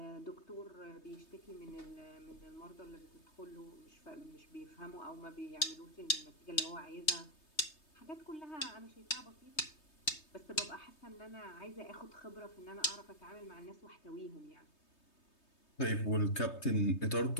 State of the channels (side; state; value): right; late; 3.2 ms